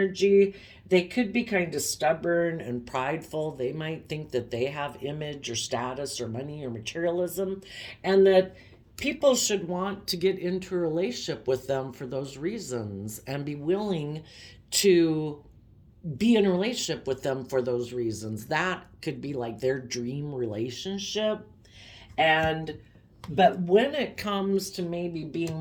they could be kind of stubborn and prideful. They might think that they have image or status or money or materialism, and that people should want to get into a relationship with them for those reasons and be willing to be in a relationship with them for those reasons. That could be like their dream relationship. And but when it comes to maybe being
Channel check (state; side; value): identical; both; correlation 1.00